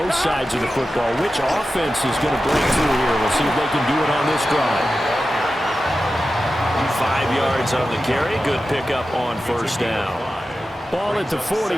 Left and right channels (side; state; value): both; normal; correlation 0.93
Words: sides of the football. Which offense is going to break through here? We'll see if they can do it on this drive. 5 yards on the carry. Good pickup on first down. Ball at the